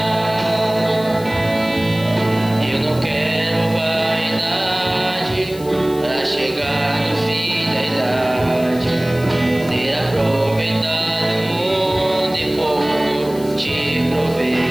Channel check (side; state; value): left; noise; hiss, 18 dB below the sound